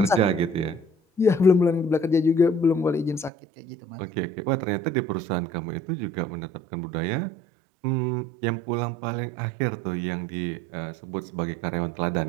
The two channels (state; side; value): drops out; left; at 3.3 s